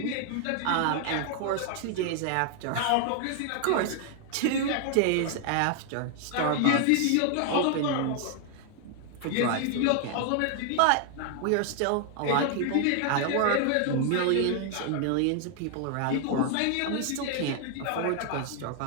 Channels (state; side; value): different; both; correlation 0.00